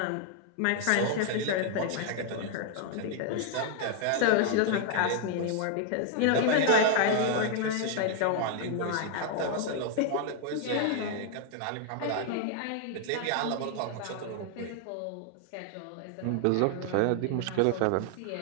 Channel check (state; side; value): different; both; correlation 0.00